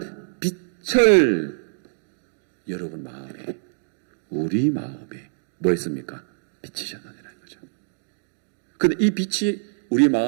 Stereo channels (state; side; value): silent; left; digital silence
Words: 빛을 여러분 마음에, 우리 마음에 뭐 했습니까? 비치셨느니라는 거죠. 근데 이 빛이 우리